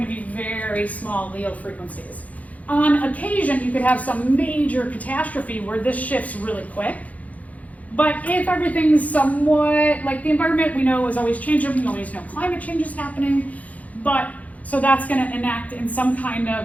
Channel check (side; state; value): right; late; 0.071 ms